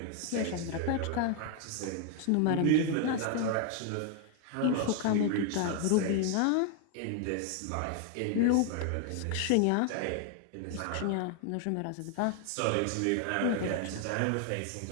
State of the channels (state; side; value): different; both; correlation 0.00